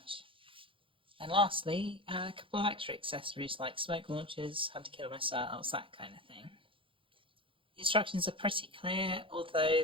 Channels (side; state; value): left; late; 0.25 ms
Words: And lastly, a couple of extra accessories like smoke launchers, hunter-killer missiles, that kind of thing. The instructions are pretty clear, although